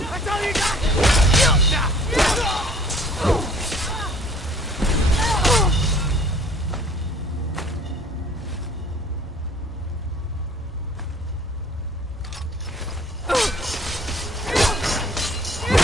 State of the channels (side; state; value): both; normal; correlation 0.54